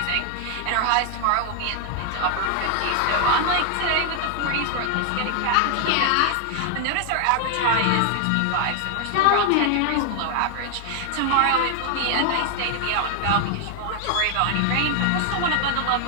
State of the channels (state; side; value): different; both; correlation 0.00